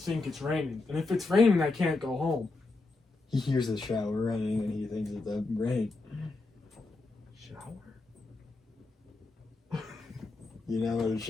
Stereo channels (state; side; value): quieter; right; 3.5 dB